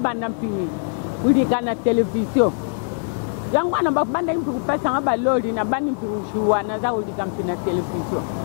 mpini kulika na television yangu ana babanda impi kupesa ngaba lori na bani impi ushuwa na za kulika mpi na television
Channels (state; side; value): silent; right; digital silence